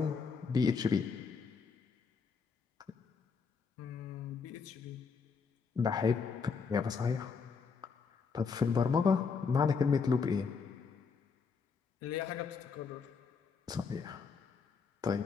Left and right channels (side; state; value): right; quieter; 5.4 dB